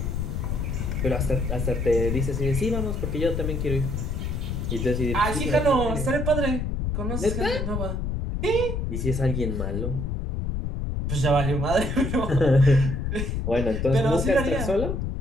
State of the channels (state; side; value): noise; left; rumble, 2 dB below the sound